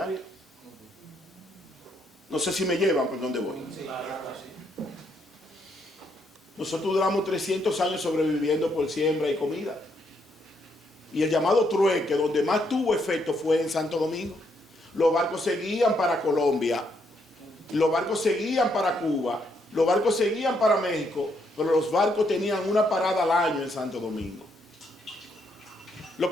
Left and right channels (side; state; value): both; normal; correlation 0.75